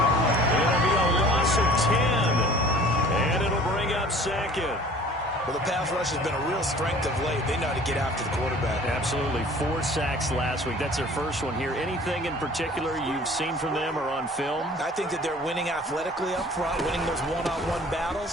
It'll be a loss of 10. And it'll bring up 2nd. Well, the pass rush has been a real strength of late. They know how to get after the quarterback. Absolutely. 4 sacks last week. That's their first one here. Anything in particular you've seen from them or on film? I think that they're winning athletically up front, winning those one-on-one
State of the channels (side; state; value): both; normal; correlation 0.48